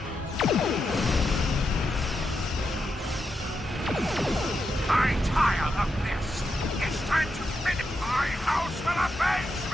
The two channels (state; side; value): normal; both; correlation 0.85